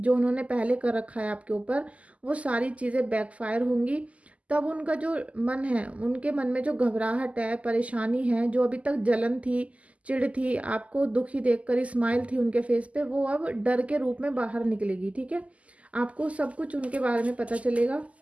उन्होंने पहले कर रखा है आपके ऊपर, वो सारी चीज़ें बैकफायर होंगी। तब उनका जो मन है, उनके मन में जो घबराहट है, परेशानी है, जो अभी तक जलन थी, चिढ़ थी, आपको दुखी देखकर स्माइल थी उनके फेस पे, वो अब डर के रूप में बाहर निकलेगी। ठीक है, आपको सब कुछ उनके बारे में पता चलेगा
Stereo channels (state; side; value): late; left; 0.067 ms